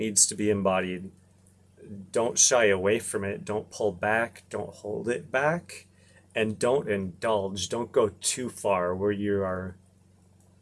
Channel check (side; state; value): both; identical; correlation 1.00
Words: to be embodied. Don't shy away from it, don't pull back, don't hold it back, and don't indulge. Don't go too far where you are